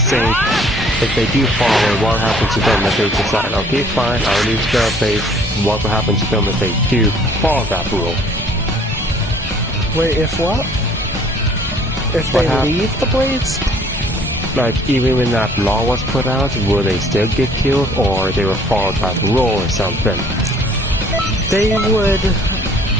saying, if they do follow, what happens to them if they decide, okay, fine, I'll leave the Blades, what will happen to them if they do follow that rule? Wait, if what? If they leave the Blades? Like, even when that law was put out, will they still get killed, or they will follow that rule or something? They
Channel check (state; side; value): normal; both; correlation 0.57